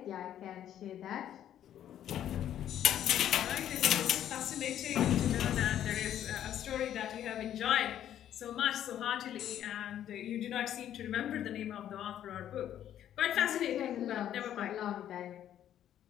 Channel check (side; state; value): right; quieter; 10.9 dB